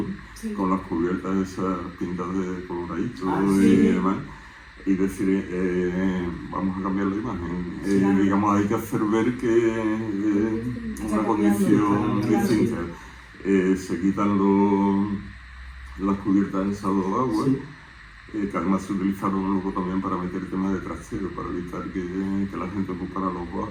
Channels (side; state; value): both; identical; correlation 1.00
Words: sí. con las cubiertas esas pintadas de coloradito Ah, y sí. demás, y decir, vamos a cambiar la imagen. Claro. Digamos, hay que hacer ver que es Está una cambiando, condición claro, distinta. Se quitan las cubiertas esas de agua, Sí. que además se utilizaron luego también para meter temas de trastero, para evitar que la gente ocupara los